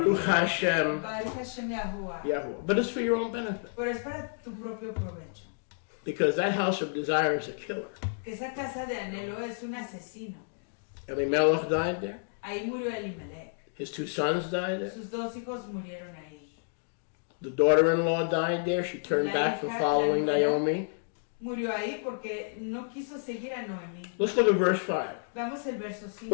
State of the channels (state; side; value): silent; right; digital silence